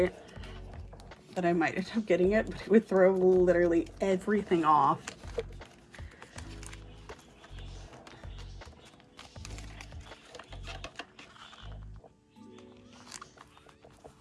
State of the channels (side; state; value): both; identical; correlation 1.00